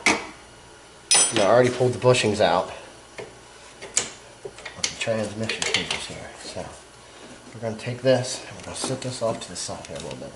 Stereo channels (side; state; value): both; identical; correlation 1.00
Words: Now, I already pulled the bushings out of the transmission cables here. So we're going to take this and we're going to set this off to the side here a little bit.